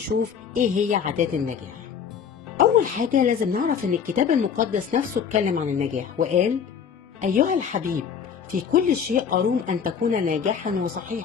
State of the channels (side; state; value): right; quieter; 7.2 dB